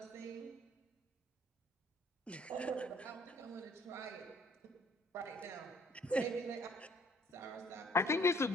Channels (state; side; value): normal; both; correlation 0.61